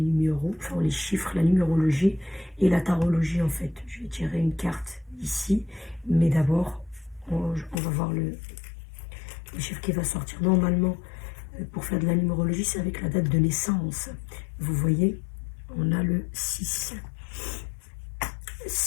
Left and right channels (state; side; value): drops out; right; at 7.8 s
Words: enfin les chiffres, la numérologie et la tarologie en fait. Je vais tirer une carte ici, mais d'abord, on va voir le chiffre qui va sortir. Normalement, pour faire de la numérologie, c'est avec la date de naissance. Vous voyez, on a le 6.